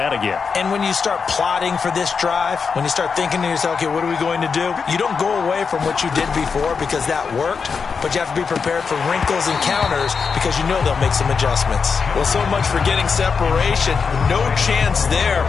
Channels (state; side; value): quieter; right; 5.5 dB